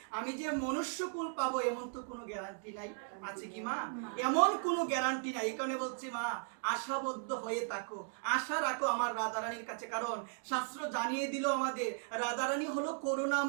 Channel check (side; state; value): left; silent; 53 dB below the other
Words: আমি যে মনুষ্যকুল পাবো এমন তো কোনো গ্যারান্টি নাই। আছে কি মা? এমন কোনো গ্যারান্টি নাই। এই কারণে বলছি মা, আশাবদ্ধ হয়ে থাকো, আশা রাখো আমার রাধারানীর কাছে। কারণ শাস্ত্র জানিয়ে দিল আমাদের রাধারানী হলো